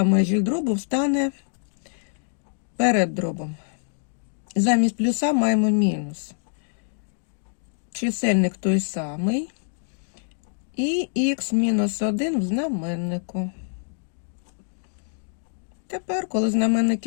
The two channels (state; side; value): silent; right; digital silence